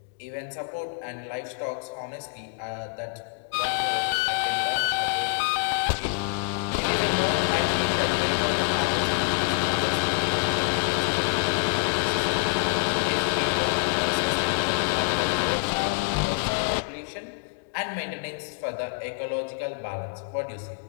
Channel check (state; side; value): silent; right; digital silence